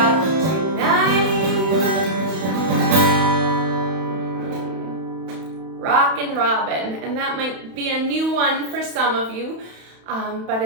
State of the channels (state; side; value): late; left; 31 ms